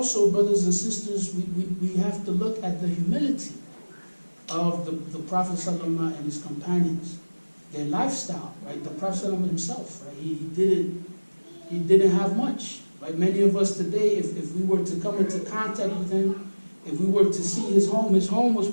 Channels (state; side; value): inverted; both; correlation -1.00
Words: brothers and sisters, we have to look at the humility of the Prophet ﷺ and his companions, their lifestyle, right? The Prophet ﷺ himself, right? He didn't have much, right? Many of us today, if we were to come into contact with him, if we were to see his home was